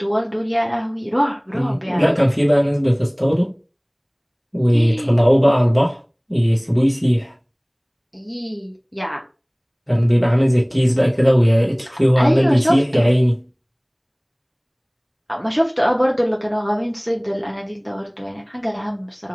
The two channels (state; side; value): identical; both; correlation 1.00